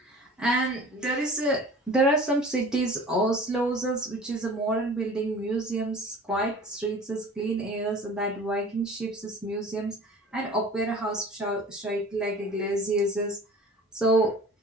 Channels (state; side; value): normal; both; correlation 0.43